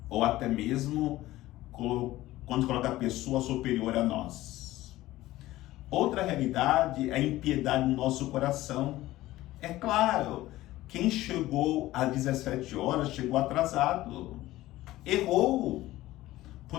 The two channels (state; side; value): quieter; right; 16.5 dB